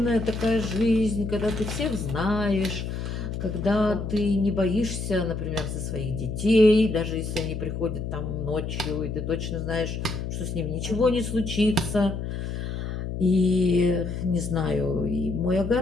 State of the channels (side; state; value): left; noise; hum, 5 dB below the sound